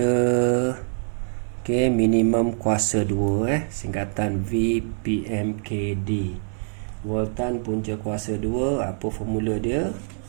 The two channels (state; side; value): silent; left; 62 dB below the other